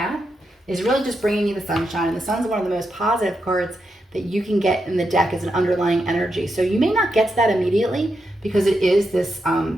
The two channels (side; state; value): both; normal; correlation 0.85